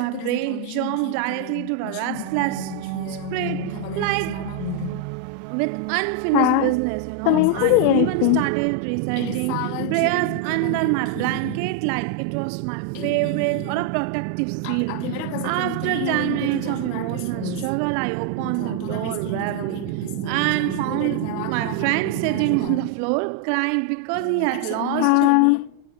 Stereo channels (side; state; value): both; different; correlation 0.00